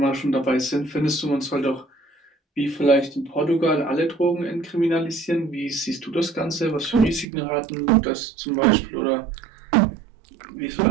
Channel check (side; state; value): left; drops out; at 7.2 s